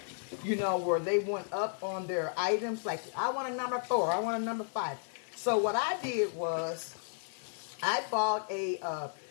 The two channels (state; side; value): silent; right; digital silence